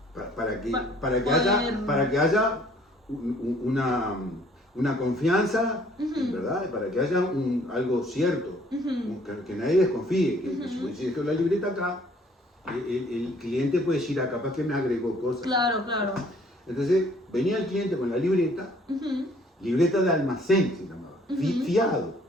Para que haya una confianza, ¿verdad? Para que haya algo cierto, que nadie desconfíe, que si dejo la libreta acá, el cliente puede decir, capaz que me agregó cosas. Claro, claro. Entonces, venía el cliente con la libreta, libreta de almacén se llamaba, fiado.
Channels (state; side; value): normal; both; correlation 0.59